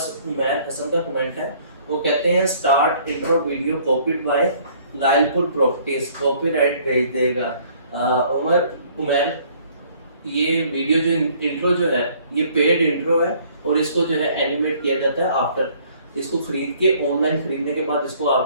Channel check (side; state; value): both; inverted; correlation -0.59